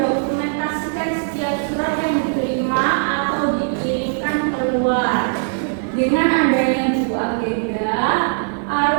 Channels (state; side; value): silent; left; digital silence